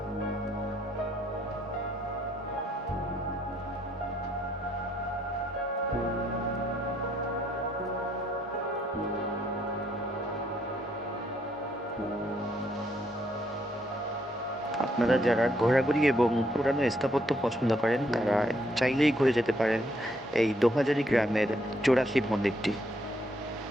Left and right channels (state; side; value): normal; both; correlation 0.71